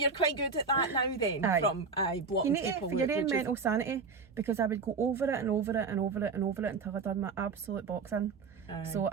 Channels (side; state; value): left; quieter; 4.9 dB